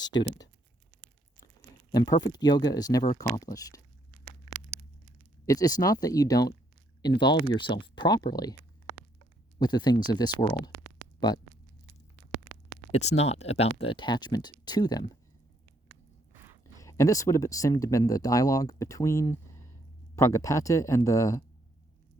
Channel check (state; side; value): normal; both; correlation 0.70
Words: And perfect yoga is never accomplished. It's not that you don't involve yourself properly with the things of this world, but it's not about the attachment to them. And this would have seemed to have been the dialogue between Pragapati and the